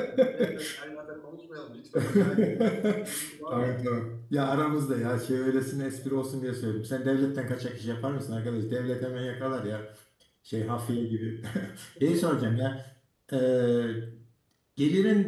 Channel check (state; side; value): identical; both; correlation 1.00